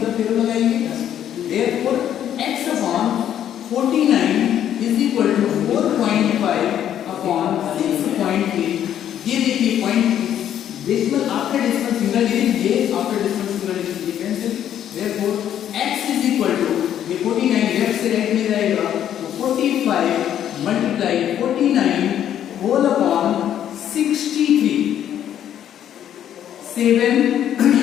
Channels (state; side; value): quieter; right; 10.4 dB